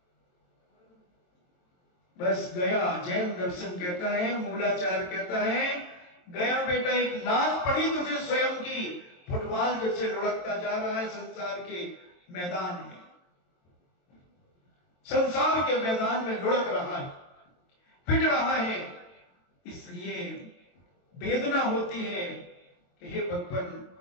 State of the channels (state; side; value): late; right; 22 ms